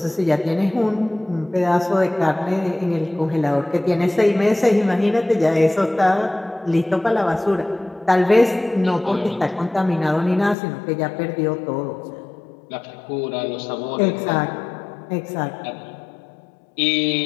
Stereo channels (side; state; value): right; drops out; at 10.6 s